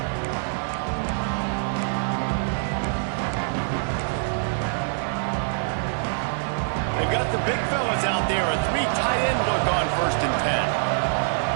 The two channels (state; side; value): silent; left; digital silence